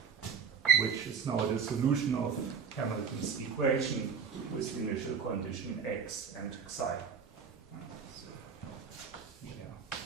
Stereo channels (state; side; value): quieter; left; 6.5 dB